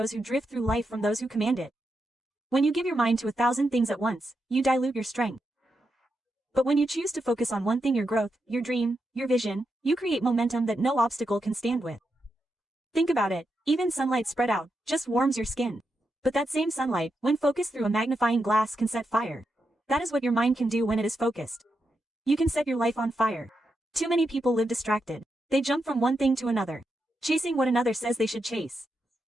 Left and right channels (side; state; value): both; normal; correlation 0.85